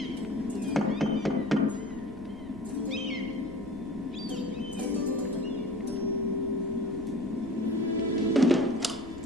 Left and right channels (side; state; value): left; noise; rumble, 17 dB below the sound